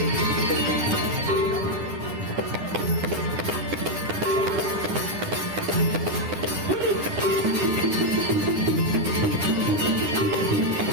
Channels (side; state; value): left; late; 9.8 ms